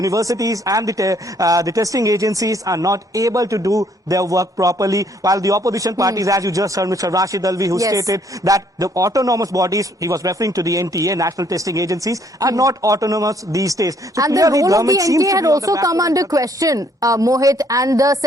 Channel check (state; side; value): normal; both; correlation 0.65